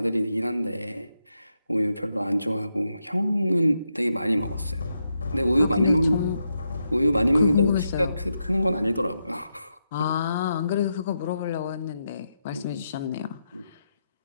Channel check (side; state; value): both; inverted; correlation -0.83